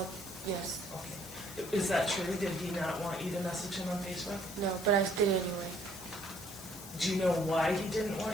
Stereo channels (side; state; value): left; noise; hiss, 14 dB below the sound